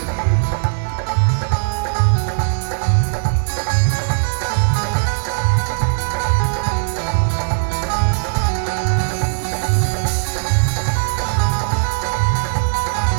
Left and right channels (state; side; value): silent; left; digital silence